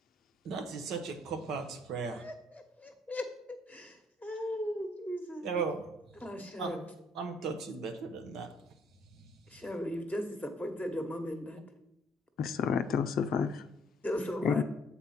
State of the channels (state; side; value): normal; both; correlation 0.65